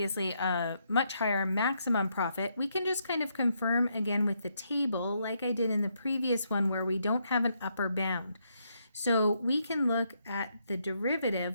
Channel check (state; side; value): inverted; both; correlation -0.77